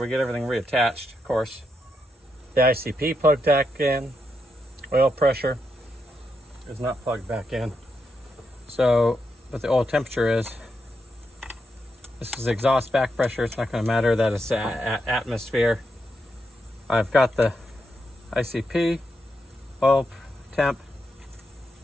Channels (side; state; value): both; normal; correlation 0.83